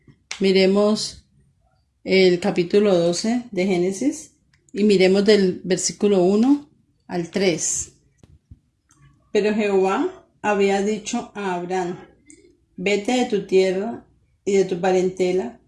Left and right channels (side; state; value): both; identical; correlation 1.00